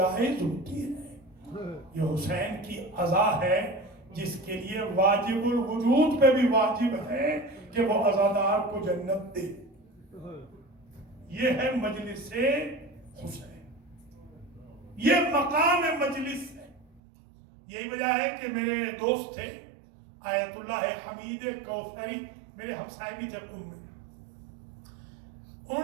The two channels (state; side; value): drops out; left; at 17.0 s